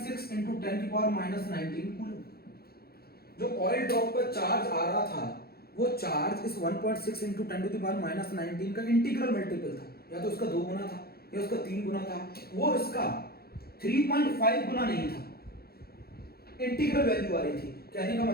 × 10⁻⁻19 कूलम। जो ऑयल ड्रॉप पर चार्ज आ रहा था वो चार्ज इस 1.6 × 10⁻⁻19 का इंटीग्रल मल्टीपल था, या तो उसका 2 गुना था, या उसका 3 गुना था, वो इसका 3.5 गुना नहीं था, इंटीग्रल वैल्यू आ रही थी। कहने का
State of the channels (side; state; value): right; late; 0.45 ms